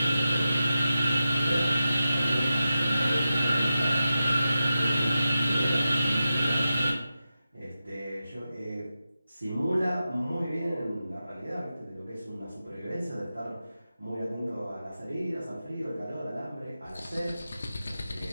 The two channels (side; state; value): both; inverted; correlation -0.91